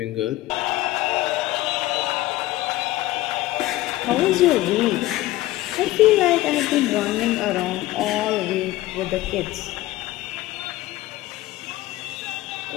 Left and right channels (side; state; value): right; quieter; 16.9 dB